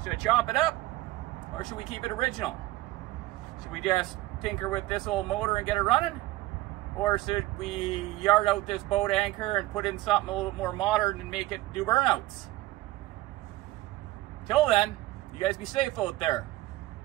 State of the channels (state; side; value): quieter; left; 17.7 dB